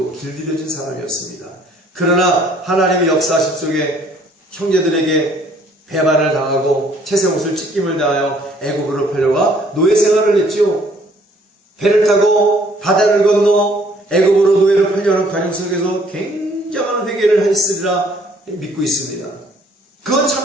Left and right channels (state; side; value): normal; both; correlation 0.61